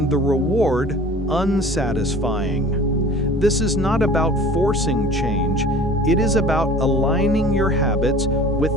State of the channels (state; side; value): normal; both; correlation 0.44